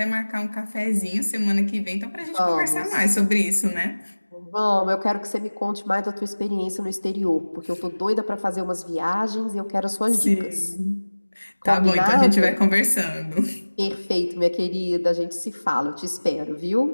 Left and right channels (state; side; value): inverted; both; correlation -1.00